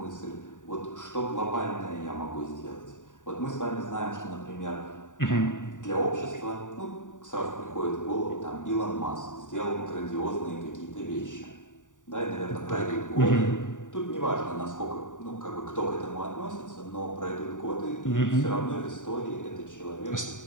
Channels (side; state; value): right; late; 0.87 ms